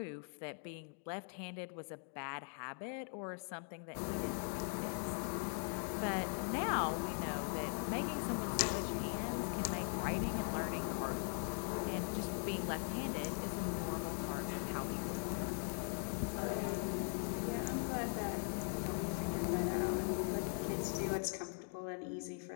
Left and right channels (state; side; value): silent; right; 50 dB below the other